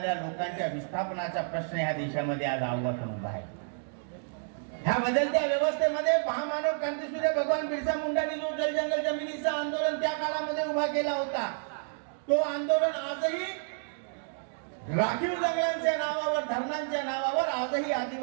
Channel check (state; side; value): silent; left; digital silence